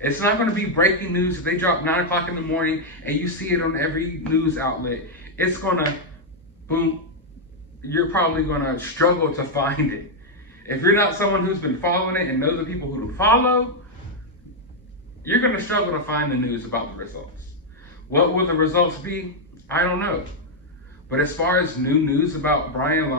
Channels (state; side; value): normal; both; correlation -0.01